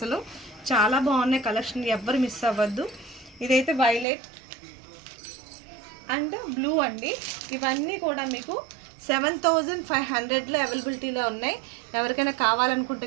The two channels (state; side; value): drops out; left; at 4.0 s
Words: చాలా బాగున్నాయి కలెక్షన్, ఎవ్వరు మిస్ అవ్వద్దు. ఇదైతే వైలెట్ అండ్ బ్లూ అండి. ఇవన్నీ కూడా మీకు 7500లో అవైలబిలిటీలో ఉన్నాయి. ఎవరికైనా కావాలనుకుంటే